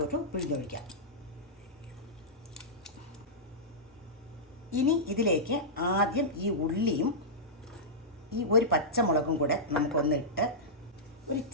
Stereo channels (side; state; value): both; normal; correlation -0.13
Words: പിഴിഞ്ഞൊഴിക്കാം. ഇനി ഇതിലേക്ക് ആദ്യം ഈ ഉള്ളിയും ഈ ഒരു പച്ചമുളകും കൂടെ നമുക്കൊന്നിട്ട് ഒരു